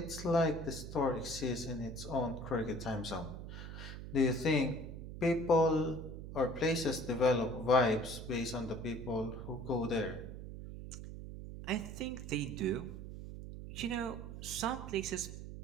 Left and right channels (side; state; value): right; noise; hum, 9 dB below the sound